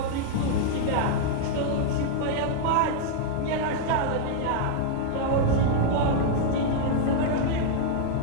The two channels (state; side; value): different; both; correlation -0.01